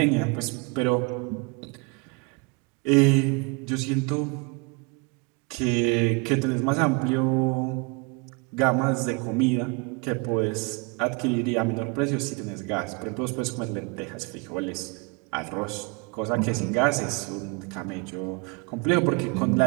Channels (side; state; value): left; quieter; 30.1 dB